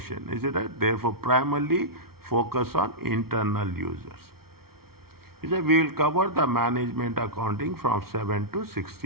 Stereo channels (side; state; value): left; late; 0.94 ms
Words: is it right? Therefore, primarily focus on internal users. He said, we will cover the management accounting from 7 to